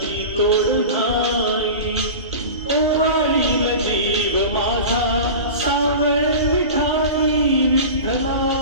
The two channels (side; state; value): both; inverted; correlation -0.32